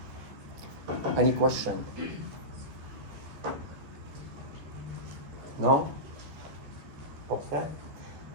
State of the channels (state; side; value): late; left; 13 ms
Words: Any question? No? Okay.